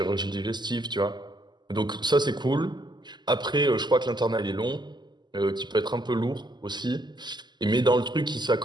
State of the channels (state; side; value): late; left; 0.21 ms